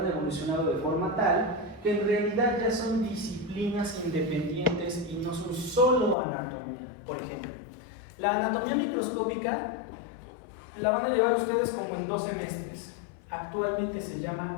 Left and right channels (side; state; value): right; drops out; at 6.2 s